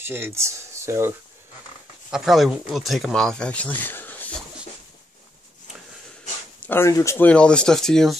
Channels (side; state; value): both; normal; correlation 0.80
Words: so I probably will take them off, actually. I don't need to explain all this stuff to you.